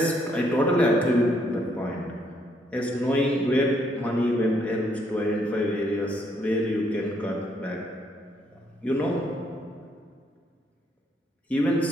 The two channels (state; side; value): normal; both; correlation 0.71